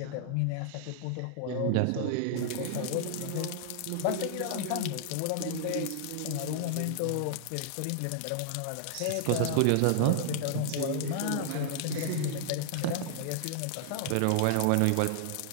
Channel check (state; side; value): different; both; correlation -0.01